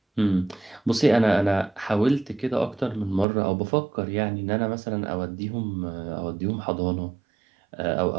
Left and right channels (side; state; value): left; drops out; at 3.2 s